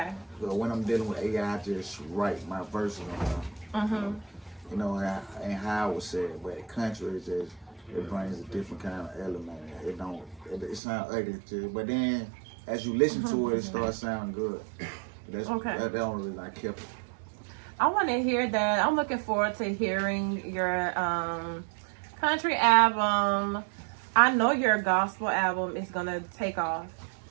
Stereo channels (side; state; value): left; drops out; at 10.8 s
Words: But when I'm dealing with AI, I just write my verses on them. You know, and how I would say it, but country is just, it brings a different kind of element. It sounds ugly too, but then as you listen to it, it starts sounding good. That's the only reason I kept it. I want to hear that. I'm looking forward to hearing your country album. I know your gospel album is gonna take off